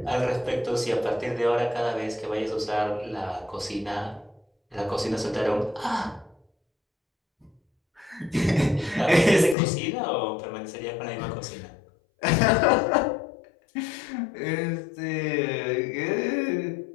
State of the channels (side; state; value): right; drops out; at 9.6 s